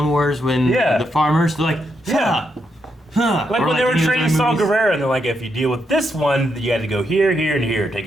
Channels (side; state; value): both; normal; correlation 0.80